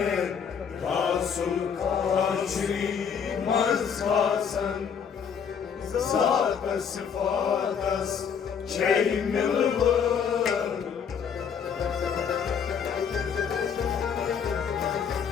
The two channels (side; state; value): right; quieter; 7.1 dB